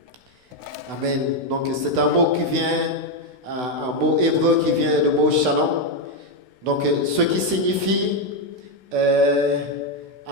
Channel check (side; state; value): left; late; 16 ms